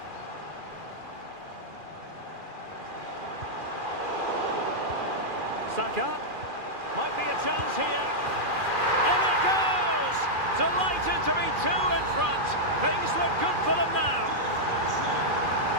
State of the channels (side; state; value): left; late; 2.4 ms